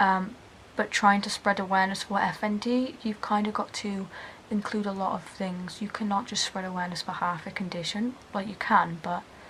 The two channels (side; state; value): both; identical; correlation 1.00